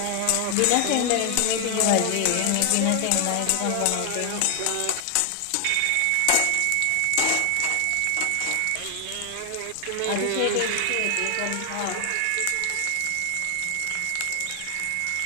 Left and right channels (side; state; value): both; different; correlation 0.00